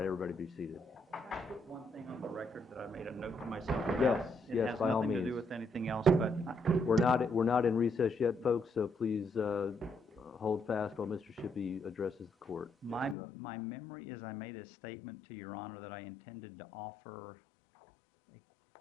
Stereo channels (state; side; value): drops out; right; at 13.2 s